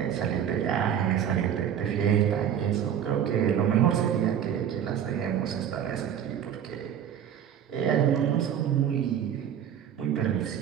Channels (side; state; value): left; quieter; 9.3 dB